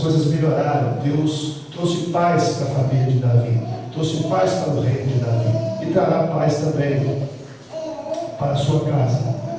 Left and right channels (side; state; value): both; identical; correlation 1.00